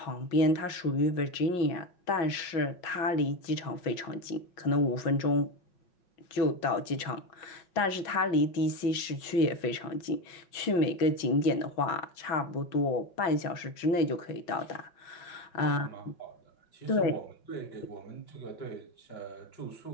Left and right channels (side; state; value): right; late; 5.5 ms